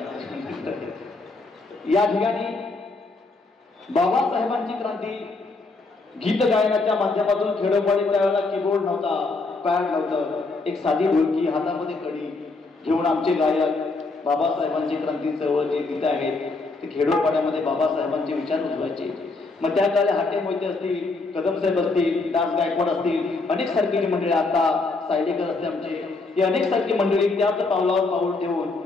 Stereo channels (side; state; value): right; quieter; 3.6 dB